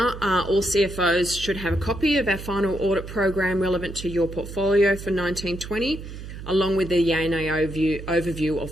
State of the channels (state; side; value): noise; right; hum, 11 dB below the sound